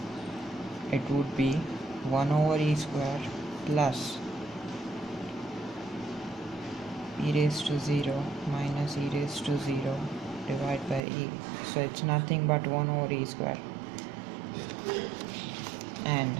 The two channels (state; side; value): drops out; left; at 11.0 s